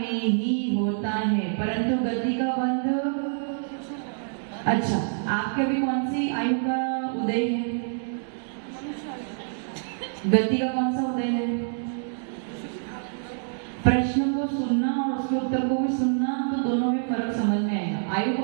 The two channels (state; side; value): silent; left; digital silence